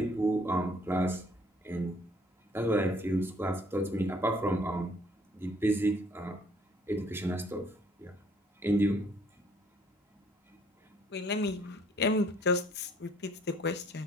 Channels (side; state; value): both; normal; correlation 0.61